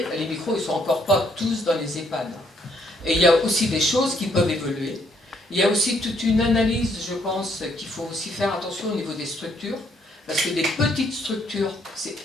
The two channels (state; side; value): normal; both; correlation 0.70